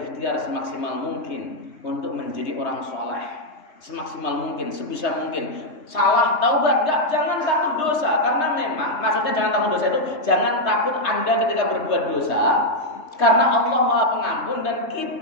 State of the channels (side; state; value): right; late; 3.3 ms